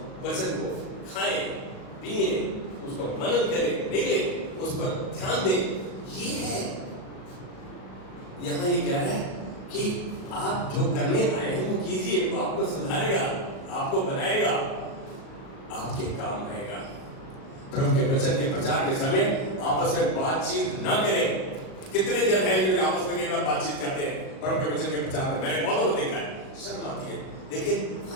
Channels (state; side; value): late; right; 37 ms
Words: वचन को खाएं, पिए, उसको मनन करें, निगले, उस पर ध्यान दें। ये है, यहां ये कह रहा है कि आप जो करने आए हैं वो कीजिए, वो आपको सुधारेगा, आपको बनाएगा, आपके काम आएगा। प्रभु के वचन के प्रचार के समय आपस में बातचीत ना करें। कितने जन हैं जो आपस में कई बार बातचीत करते हैं प्रभु के वचन के प्रचार में? मैंने बहुतों को देखा है, शर्म आती है। लेकिन